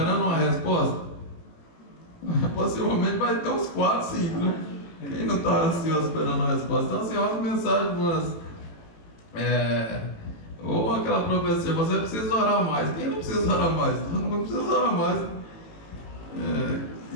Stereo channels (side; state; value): right; late; 18 ms